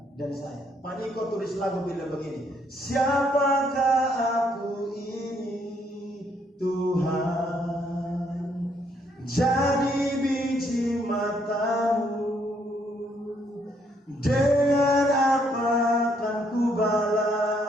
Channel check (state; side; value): normal; both; correlation 0.70